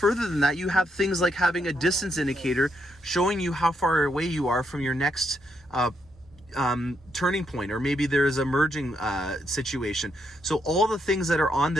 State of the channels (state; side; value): normal; both; correlation 0.78